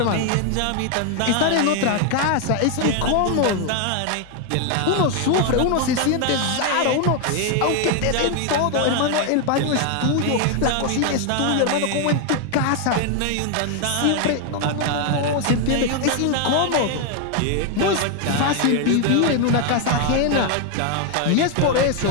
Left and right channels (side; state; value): both; different; correlation 0.01